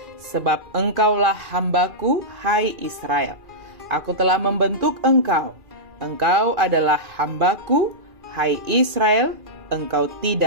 sebab engkaulah hambaku, hai Israel. Aku telah membentuk engkau. Engkau adalah hambaku, hai Israel, engkau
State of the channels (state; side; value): late; left; 2.4 ms